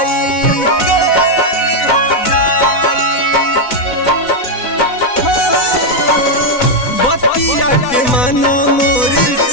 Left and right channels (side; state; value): right; late; 4.0 ms